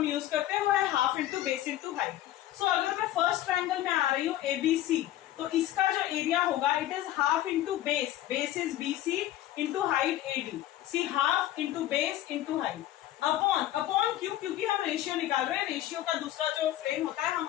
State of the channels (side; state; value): right; quieter; 13.7 dB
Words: यूज करते हैं वो है half into base into height. So अगर मैं फर्स्ट ट्रायंगल में आ रही हूँ ABC, तो इसका जो एरिया होगा it is half into base is BC into height AD. See half into base into height upon क्यों, क्योंकि हम रेशियो निकाल रहे हैं. रेशियो का दूसरा जो फ्रेम होता है हम